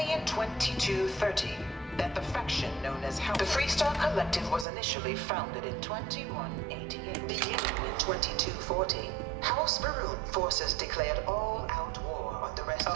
in 2230 that the faction known as the Freestar Collective was initially founded in 2188. Beginning in 2240, House Baroon forces declared all-out war on the rest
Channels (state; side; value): drops out; left; at 4.7 s